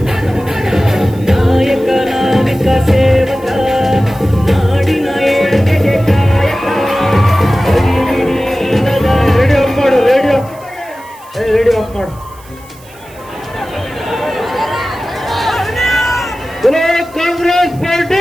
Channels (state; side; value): noise; right; hiss, 25 dB below the sound